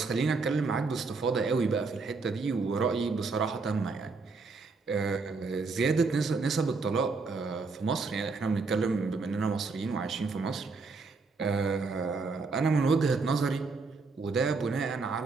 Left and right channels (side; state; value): left; quieter; 4.2 dB